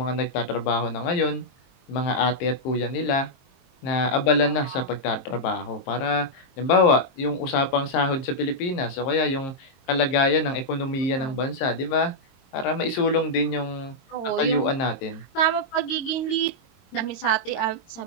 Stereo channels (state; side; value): late; right; 22 ms